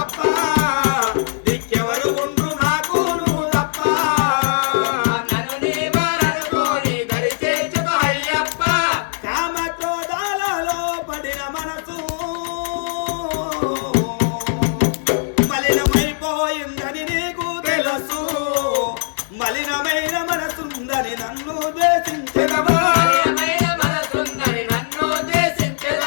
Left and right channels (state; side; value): silent; right; digital silence